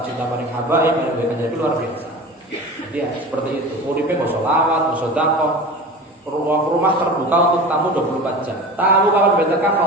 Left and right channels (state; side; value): normal; both; correlation 0.34